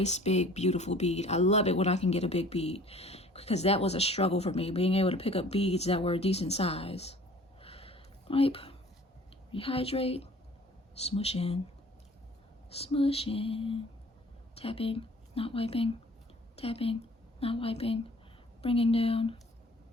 big, beautiful bead. I love it when I can get a big bead, because that was a struggle for me, being able to pick up beads that were a decent size. Wipe, rehydrate, smush in, tapping, not wiping, tapping, not wiping, bringing down.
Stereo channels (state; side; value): normal; both; correlation 0.50